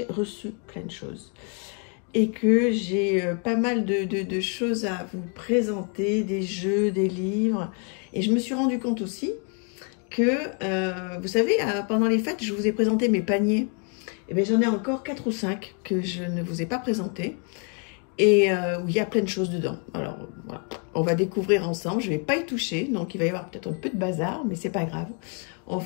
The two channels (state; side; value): quieter; right; 39.7 dB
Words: reçu plein de choses et que j'ai pas mal de choses à vous présenter, des jeux, des livres. Et je me suis rendu compte aussi que, vous savez, pendant les fêtes, je vous ai présenté mes paniers. Et bien, j'en ai encore 4 ou 5 que je ne vous ai pas présentés et où il y a plein de choses dedans. Alors, voilà, on va découvrir ensemble. Je ne vais pas y toucher, donc il va y avoir peut-être un peu de bazar, mais c'est pas grave. On